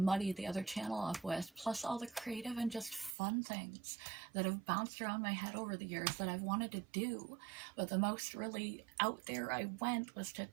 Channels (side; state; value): left; drops out; at 3.2 s